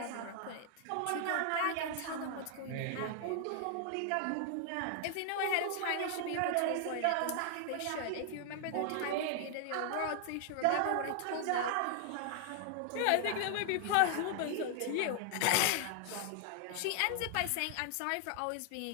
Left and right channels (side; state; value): both; different; correlation 0.00